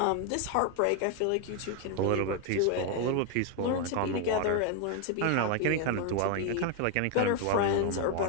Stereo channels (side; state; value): both; different; correlation 0.01